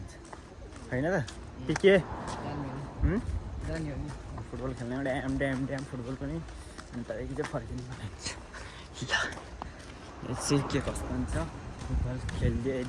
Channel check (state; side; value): identical; both; correlation 1.00